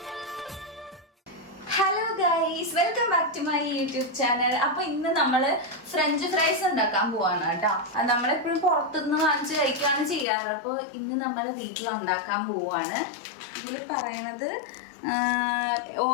Hello guys, welcome back to my YouTube channel. അപ്പൊ ഇന്ന് നമ്മള് ഫ്രഞ്ച് ഫ്രൈസ് ഉണ്ടാക്കാൻ പോവാണ് കേട്ടോ. നമ്മളെപ്പോഴും പുറത്തുനിന്ന് വാങ്ങിച്ച് കഴിക്കുകയാണ് ചെയ്യാറ്. അപ്പോൾ ഇന്ന് നമ്മൾ വീട്ടിൽ ഉണ്ടാക്കാൻ പോവാണ്. ഇതിൽ പറയണത്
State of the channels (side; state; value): right; drops out; at 10.2 s